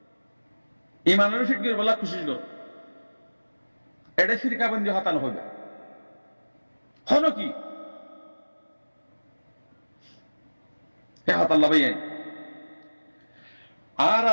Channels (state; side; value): inverted; both; correlation -1.00